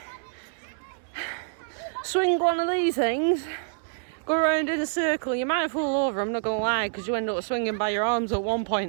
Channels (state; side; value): silent; left; 60 dB below the other